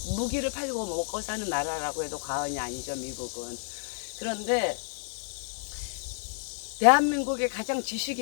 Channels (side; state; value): right; silent; 58 dB below the other